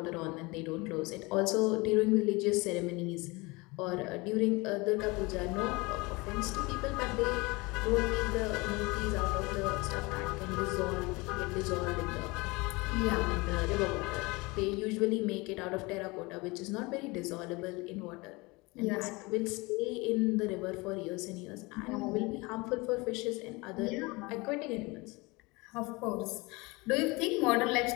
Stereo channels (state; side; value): quieter; right; 24.8 dB